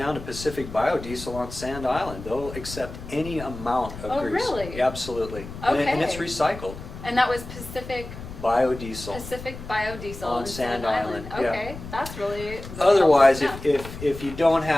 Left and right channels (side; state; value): left; noise; rumble, 12 dB below the sound